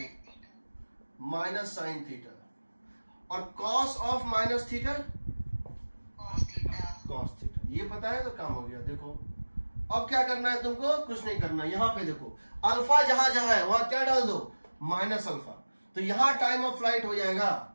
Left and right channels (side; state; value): both; inverted; correlation -1.00